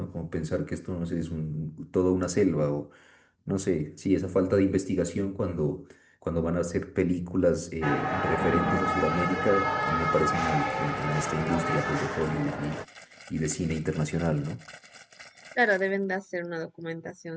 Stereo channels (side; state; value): both; identical; correlation 1.00